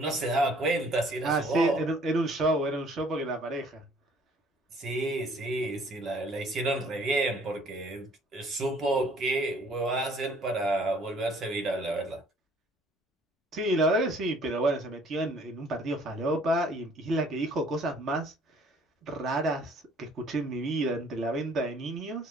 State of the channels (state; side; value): normal; both; correlation 0.58